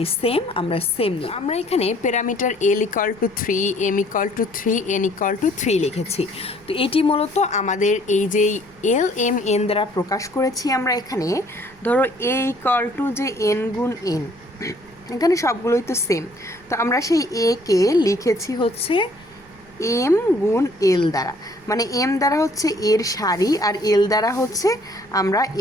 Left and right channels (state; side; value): noise; right; rumble, 28 dB below the sound